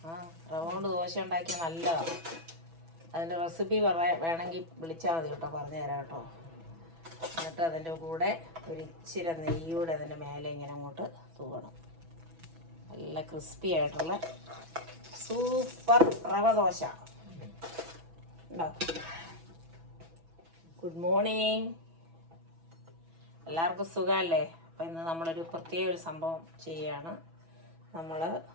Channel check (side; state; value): left; late; 6.1 ms